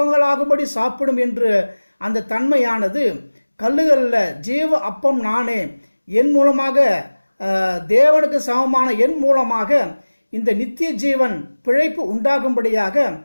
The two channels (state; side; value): inverted; both; correlation -1.00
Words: சாப்பிடும் என்று அந்த தன்மையானது கல்லுகளில் ஜீவ அப்பம் நானே, என் மூலமாக தேவனுக்கு சமமான என் மூலமாக இந்த நித்திய ஜீவன் பிழைப்பு உண்டாகும்படியாக